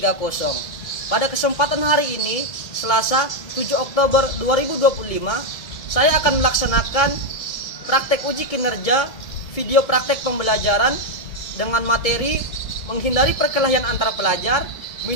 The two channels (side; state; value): right; late; 2.2 ms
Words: Pada kesempatan hari ini, Selasa 7 Oktober 2025, saya akan melaksanakan praktek uji kinerja video praktek pembelajaran dengan materi menghindari perkelahian antar pelajar,